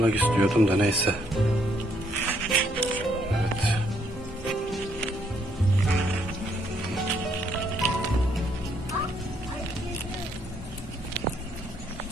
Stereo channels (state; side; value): normal; both; correlation 0.70